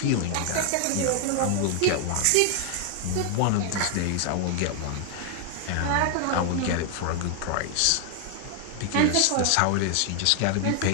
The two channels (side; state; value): both; different; correlation 0.00